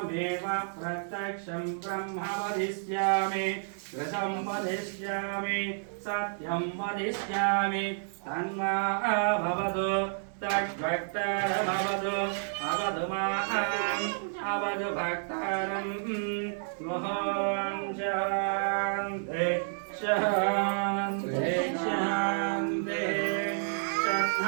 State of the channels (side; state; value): left; silent; digital silence